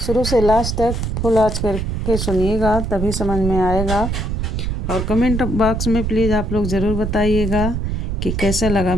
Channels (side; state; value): right; noise; rumble, 2 dB below the sound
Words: से लास्ट तक फुल आँच करके सुनिएगा, तभी समझ में आएगा। और कमेंट बॉक्स में प्लीज़ आप लोग ज़रूर बताइएगा कि कैसा लगा